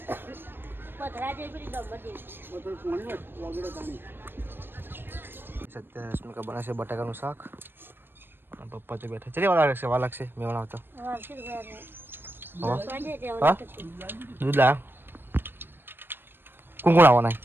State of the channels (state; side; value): late; left; 0.099 ms